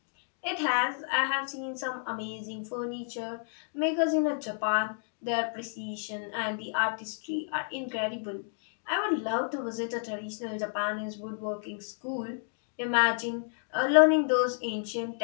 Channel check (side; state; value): right; silent; digital silence